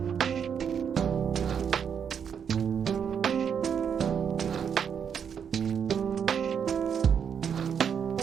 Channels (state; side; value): quieter; left; 7.6 dB